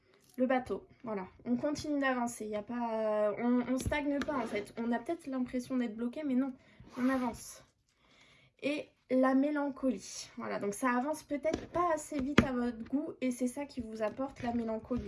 Le bateau, voilà, on continue d'avancer, il y a pas, on stagne pas en fait. On a peut-être l'impression d'être bloqué, mais non, on avance. Et la mélancolie, voilà, donc ça avance peut-être pas assez vite à votre goût et c'est ça qui vous apporte la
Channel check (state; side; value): identical; both; correlation 1.00